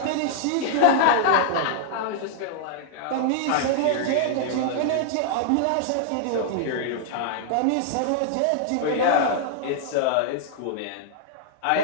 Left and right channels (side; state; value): both; different; correlation -0.01